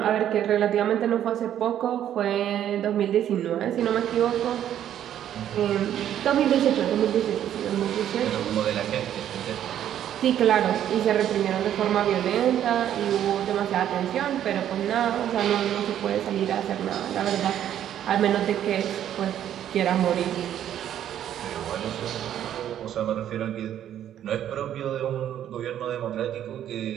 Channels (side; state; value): left; quieter; 10.7 dB